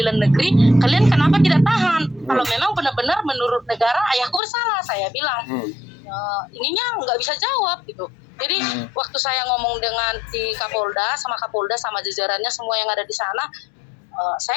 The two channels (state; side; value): drops out; right; at 4.4 s